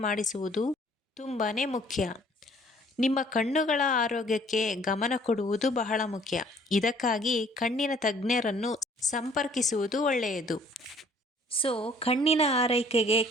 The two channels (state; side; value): normal; both; correlation 0.57